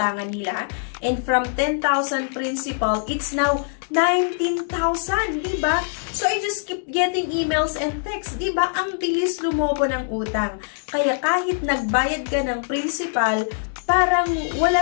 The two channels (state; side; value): silent; right; 64 dB below the other